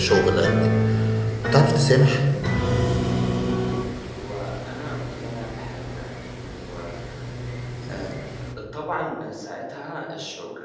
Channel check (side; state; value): both; identical; correlation 1.00